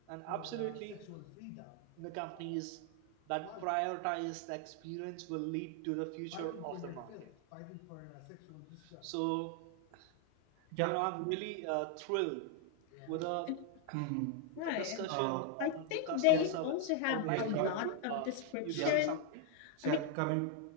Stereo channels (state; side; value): different; both; correlation 0.00